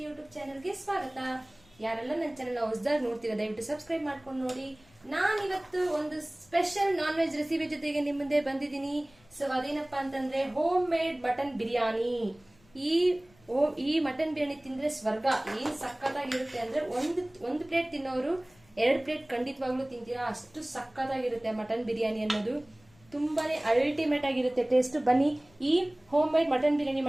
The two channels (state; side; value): noise; left; rumble, 29 dB below the sound